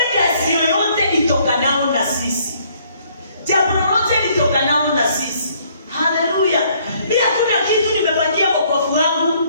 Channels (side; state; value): both; inverted; correlation -0.64